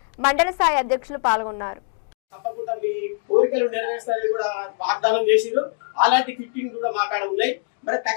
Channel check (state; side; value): silent; right; 56 dB below the other